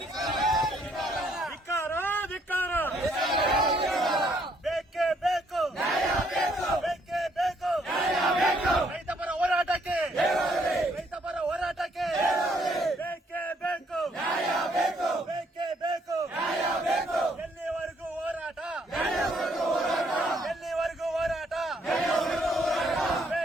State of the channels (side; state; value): both; normal; correlation 0.69